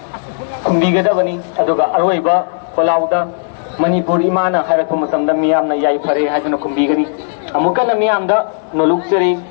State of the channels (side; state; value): right; silent; digital silence